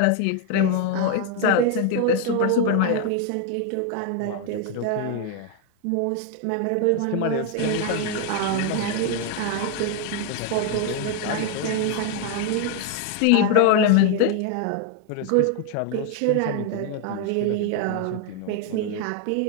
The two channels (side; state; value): both; different; correlation 0.01